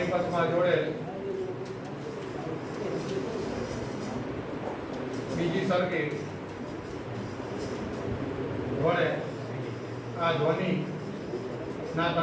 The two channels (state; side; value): identical; both; correlation 1.00